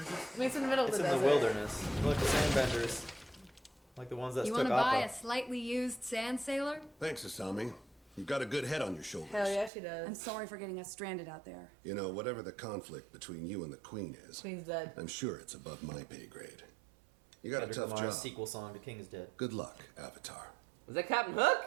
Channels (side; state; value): left; drops out; at 9.7 s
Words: just... I mean, it's in the middle of It's the in desert. the wilderness. Look, the sandbenders. Like the ones that You took want to buy Appa. a slightly used sand sailor? Thanks, Asami. You've got a good head on your shoulders. Hell yeah, she does. I'm sorry for getting us stranded out there. You know, whatever the conflict between you and the Queen is, Queen's dead. I'm sure it's above my pay grade. You got a Kendrick tough Lamar's job. sequel song to King is Dead. Good luck, Avatar. Was that Captain Hook?